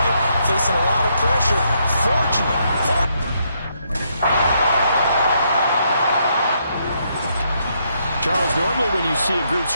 facing a lot of pressure. Fortunate. Charles, normally when you see a group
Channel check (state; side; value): inverted; both; correlation -0.75